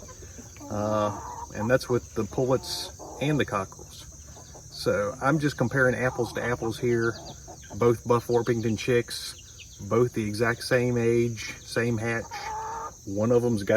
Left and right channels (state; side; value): identical; both; correlation 1.00